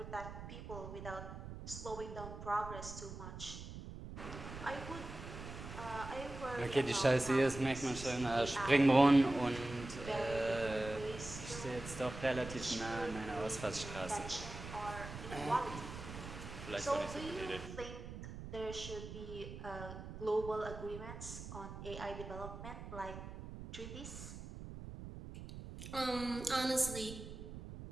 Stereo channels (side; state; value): right; noise; rumble, 10 dB below the sound